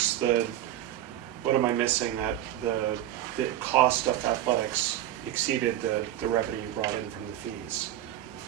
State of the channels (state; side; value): quieter; left; 12.9 dB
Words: am I missing, that the cost of athletics exceeded the revenue you brought in from the fees?